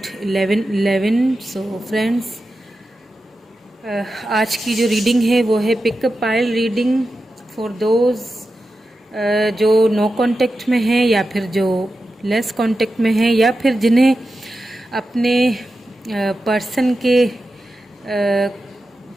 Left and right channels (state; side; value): normal; both; correlation 0.91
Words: 1111। So friends, आज की जो रीडिंग है वो है pickup pile reading for those जो नो कांटेक्ट में हैं या फिर जो लेस कांटेक्ट में हैं या फिर जिन्हें अपने पर्सन के